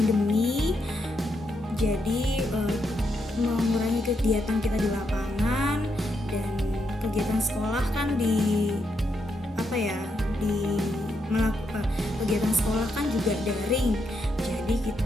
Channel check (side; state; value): both; normal; correlation 0.80